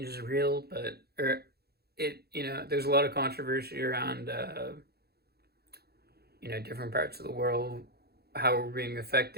is real, but there's a lot of controversy around different parts of the world, how we're being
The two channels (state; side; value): late; left; 0.46 ms